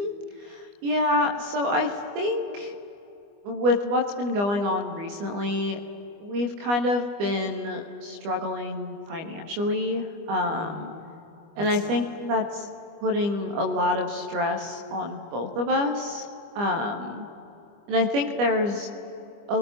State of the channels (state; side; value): late; left; 25 ms